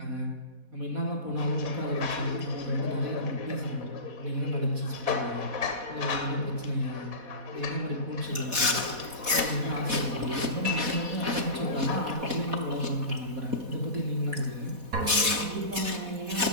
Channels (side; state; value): left; late; 4.1 ms